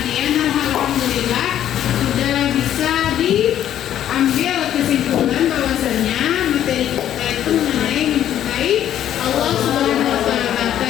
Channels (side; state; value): right; quieter; 11.0 dB